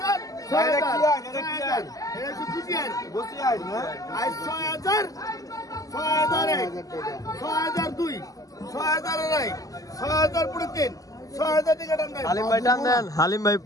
6000 এটা কি বুঝিয়ার বুঝিয়ার না? আই 6000 6001 6002 6000 নাই 6000 পুরো 3 6000 টাকা দাম নাই। হালিম ভাই টান দেন। হালিম ভাই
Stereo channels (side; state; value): right; late; 0.17 ms